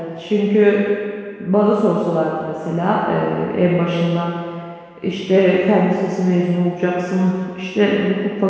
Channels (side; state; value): both; identical; correlation 1.00